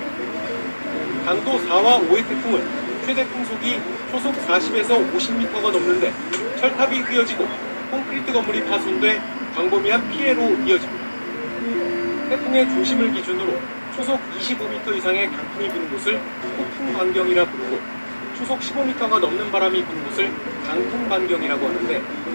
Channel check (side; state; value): both; inverted; correlation -1.00